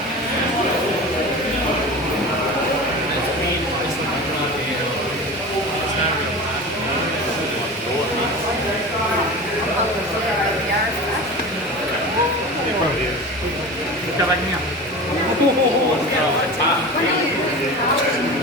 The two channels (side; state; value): both; normal; correlation 0.32